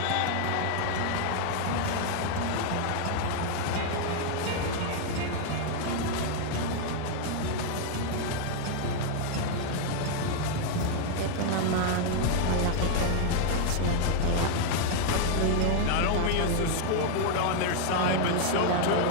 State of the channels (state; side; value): different; both; correlation 0.00